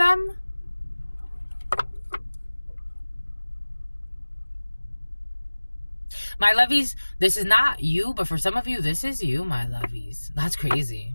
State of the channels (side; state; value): both; inverted; correlation -1.00